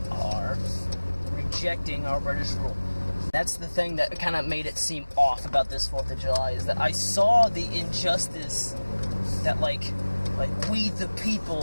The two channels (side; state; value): both; inverted; correlation -1.00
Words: are rejecting our British rule. That's the thing that kind of made it seem off about this 4th of July, is that I saw the injustice that like we the